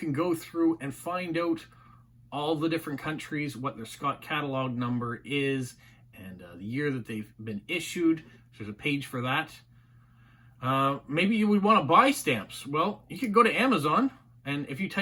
go through and find out all the different countries, what their Scott catalog number is, and the year that they've been issued. There's a page for that. Maybe you would want to buy stamps. Well, you could go to Amazon, and if you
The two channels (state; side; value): identical; both; correlation 1.00